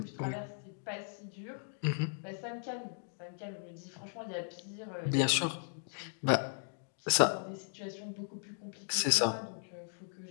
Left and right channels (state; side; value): silent; right; digital silence